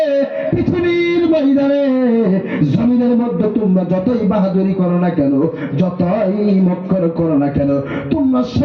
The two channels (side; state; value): both; identical; correlation 1.00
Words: পৃথিবীর ময়দানে জমিনের মধ্যে তোমরা যতই বাহাদুরি করো না কেন, যতই মক্কর করো না কেন, তোমরা